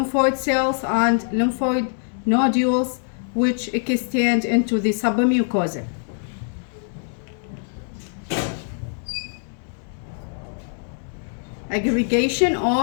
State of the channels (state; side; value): silent; right; 63 dB below the other